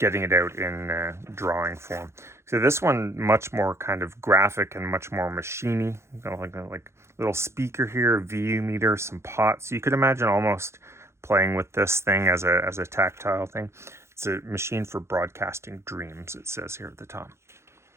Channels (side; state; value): left; late; 0.13 ms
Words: it out in drawing form. So this one, much more kind of graphic and much more machiney. Like little speaker here, VU meter, some pots. You could imagine almost playing with this thing as a tactile thing. It's a machine for broadcasting dreams, it says here at the top.